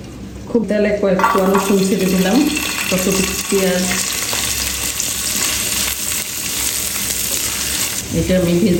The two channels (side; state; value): both; identical; correlation 1.00